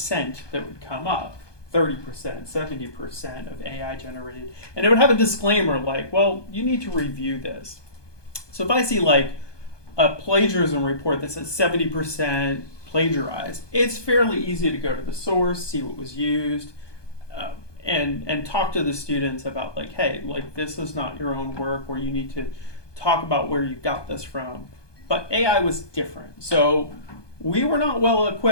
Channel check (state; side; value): late; right; 1.2 ms